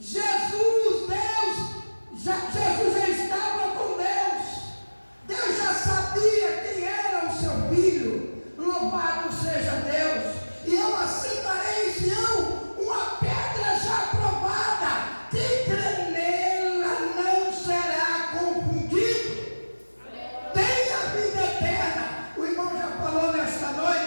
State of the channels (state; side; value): inverted; both; correlation -1.00